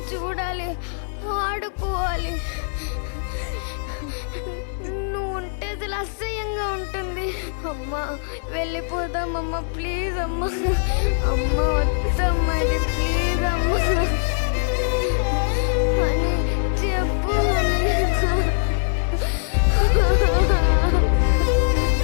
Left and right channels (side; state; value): right; silent; digital silence